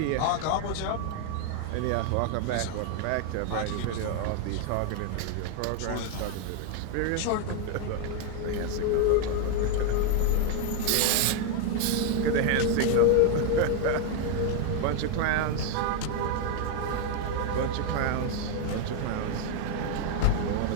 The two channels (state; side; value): different; both; correlation 0.01